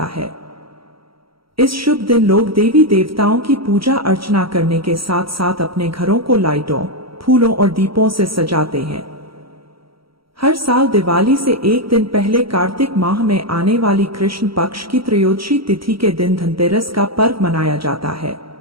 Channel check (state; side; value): late; left; 0.75 ms